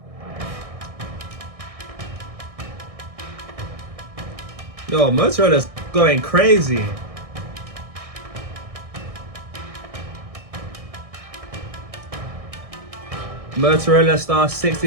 Yo, Motorola's going crazy. Motorola Star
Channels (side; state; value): left; late; 1.6 ms